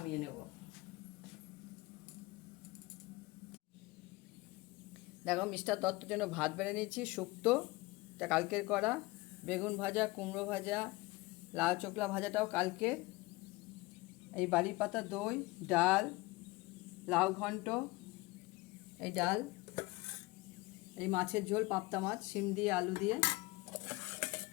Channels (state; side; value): quieter; right; 22.3 dB